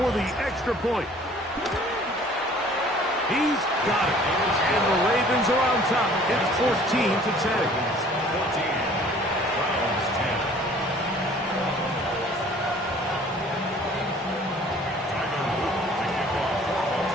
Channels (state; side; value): normal; both; correlation 0.53